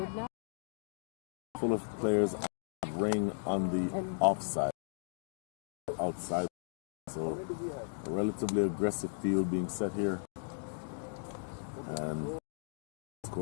now? full of players ring on the offside, outside. So a relatively aggressive field being set here. And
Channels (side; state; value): right; silent; digital silence